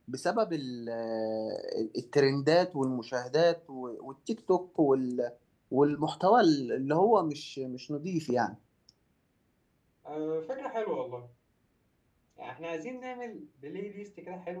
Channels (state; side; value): identical; both; correlation 1.00